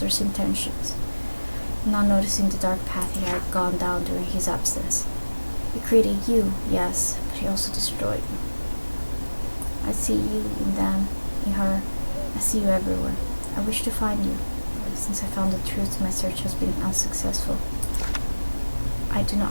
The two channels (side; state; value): both; inverted; correlation -1.00